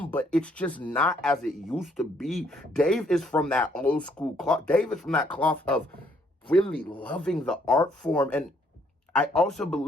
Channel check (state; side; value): normal; both; correlation 0.67